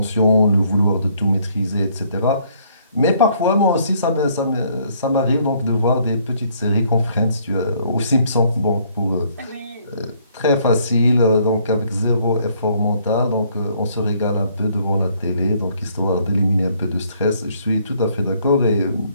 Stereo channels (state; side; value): inverted; both; correlation -0.65